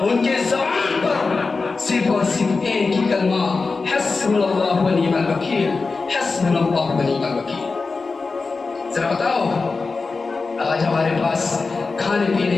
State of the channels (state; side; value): quieter; right; 4.2 dB